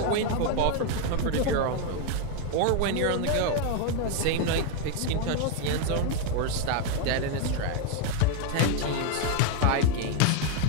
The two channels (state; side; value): different; both; correlation 0.01